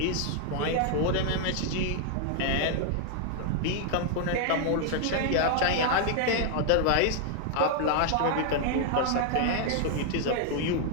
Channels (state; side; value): different; both; correlation 0.00